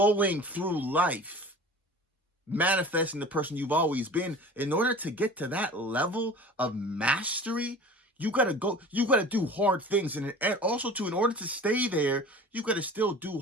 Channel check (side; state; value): both; normal; correlation 0.40